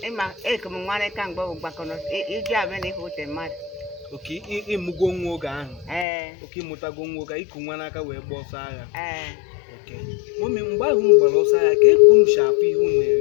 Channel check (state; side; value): drops out; right; at 6.1 s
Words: ịma ekem nwere ka mgbe bụ gbakọrọ iji abịa na ife mmadụ. Oke ịmụgo nwa oge ahụ. Oke ịmụtago nwa oge iku nwa n'aka wee gba ọsọ agha. Oke mọmi mgbe ahụ unu gbara ọsọ agha ka ekunu si afụ ihe unu